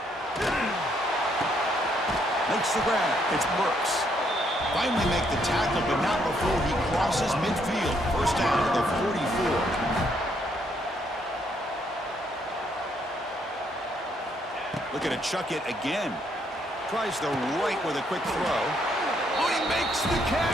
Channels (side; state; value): both; normal; correlation 0.72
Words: Makes the grab. It's Burks. Finally make the tackle, but not before he crosses midfield. 1st down to the 44. Looking to chuck it again. Tries the right with a quick throw. Oh, he makes the